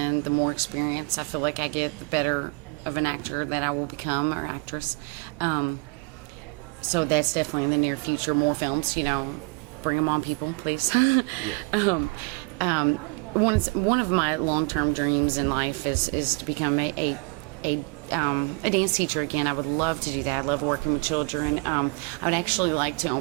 The more experience I feel like I get, the better of an actor that I will become, or actress. So that's definitely in the near future. More films, bring them on, people, please. Yeah. One of my long-term dreams in life is to become a a dance teacher again. I would love to do that. I love working with children. I would actually like to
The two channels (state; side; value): quieter; left; 30.5 dB